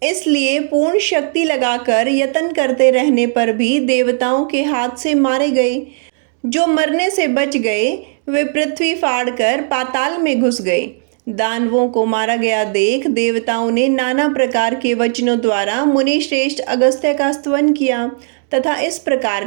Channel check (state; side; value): silent; left; 59 dB below the other